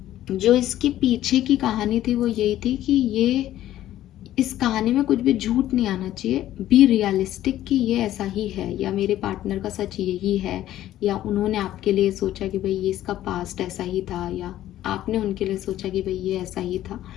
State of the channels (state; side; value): quieter; right; 13.3 dB